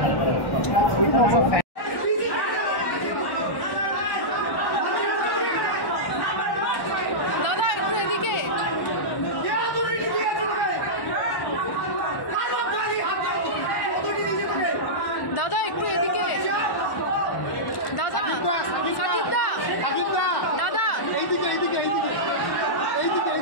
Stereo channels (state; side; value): late; right; 1.1 ms